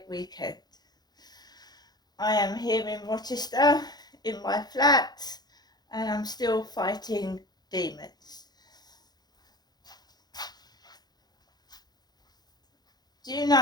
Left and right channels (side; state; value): right; late; 0.19 ms